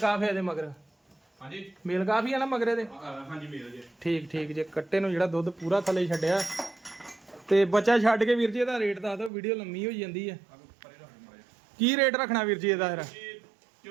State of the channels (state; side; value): drops out; left; at 9.3 s